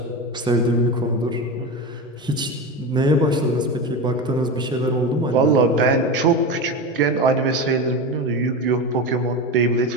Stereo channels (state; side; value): normal; both; correlation 0.22